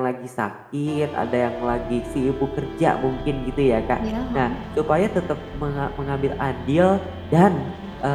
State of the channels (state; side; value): identical; both; correlation 1.00